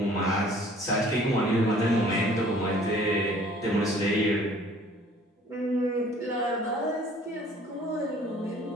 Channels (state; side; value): normal; both; correlation 0.54